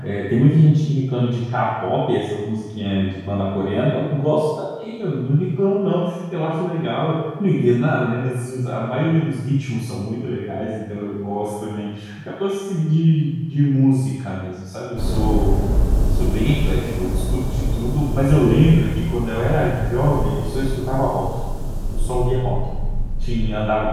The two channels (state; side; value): identical; both; correlation 1.00